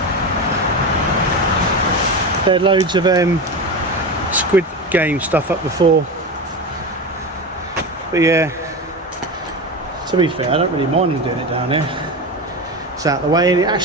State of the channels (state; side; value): normal; both; correlation 0.22